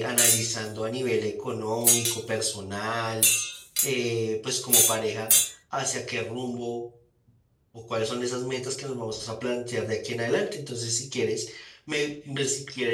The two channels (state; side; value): identical; both; correlation 1.00